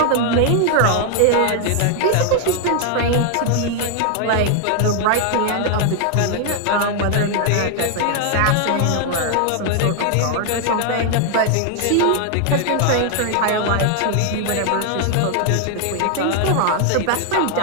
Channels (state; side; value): different; both; correlation 0.00